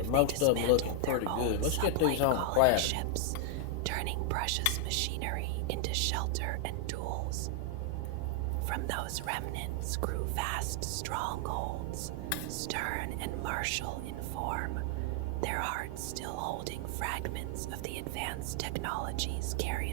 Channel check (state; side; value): different; both; correlation 0.00